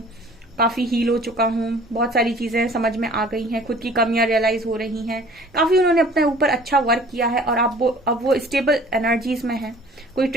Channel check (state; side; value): normal; both; correlation 0.50